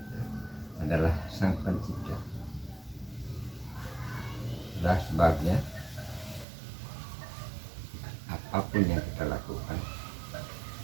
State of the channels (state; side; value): drops out; left; at 6.5 s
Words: adalah Sang Pencipta. Itulah sebabnya apapun yang kita lakukan